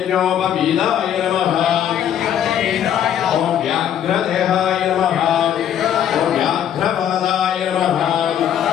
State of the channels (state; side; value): quieter; right; 9.8 dB